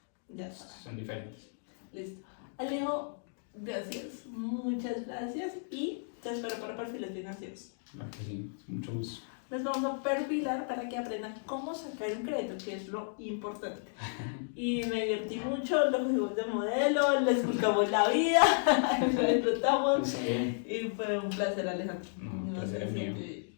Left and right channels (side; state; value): right; silent; digital silence